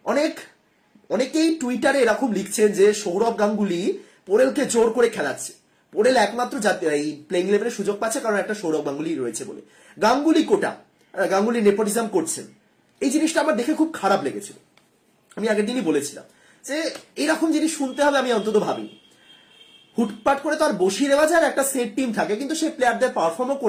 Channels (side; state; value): both; identical; correlation 1.00